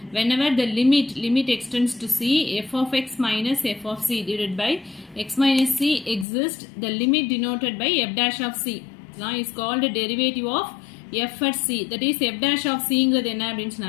whenever the limit extends to c, f of x minus f of c divided by x minus c exists, the limit denoted by f dash of c is called a derivative of f at c. That is f dash of c ங்கிறது என்ன அப்படினு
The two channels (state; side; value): drops out; right; at 6.2 s